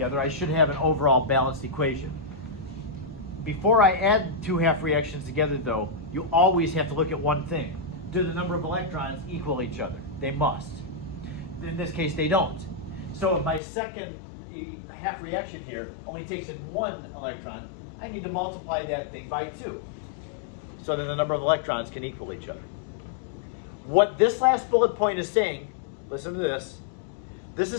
I should have an overall balanced equation. Before I add 2 half reactions together though, you always have to look at one thing. Do the number of electrons equal each other? They must. In this case, they don't. So if my second half reaction here only takes in 1 electron, I need to multiply that thing by 2. So then the number of electrons can equal each other. What this last bullet point is saying, listen to this. This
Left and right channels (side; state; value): right; drops out; at 13.6 s